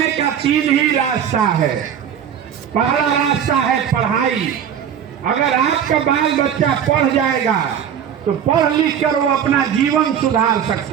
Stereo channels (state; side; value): quieter; left; 8.7 dB